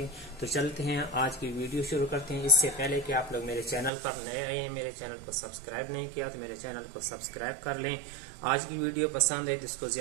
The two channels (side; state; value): left; drops out; at 3.9 s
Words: तो चलते हैं, आज की वीडियो शुरू करते हैं। इससे पहले कि आप लोग मेरे चैनल पर नए आए हैं, मेरे चैनल को सब्सक्राइब नहीं किया तो मेरे चैनल को सब्सक्राइब कर लें। आज की वीडियो पसंद है तो इसको